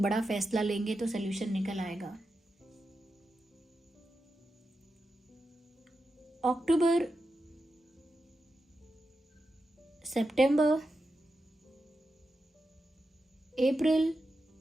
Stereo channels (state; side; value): normal; both; correlation 0.89